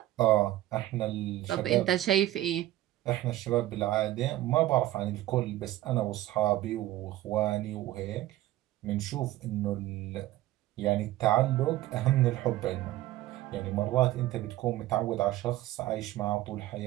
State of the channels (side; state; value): left; quieter; 15.2 dB